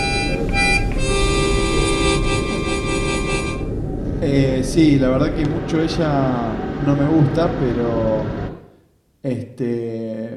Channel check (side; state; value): both; identical; correlation 1.00